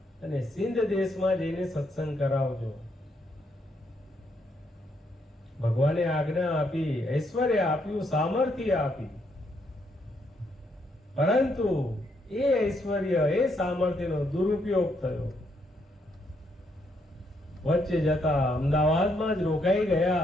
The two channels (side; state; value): both; normal; correlation 0.75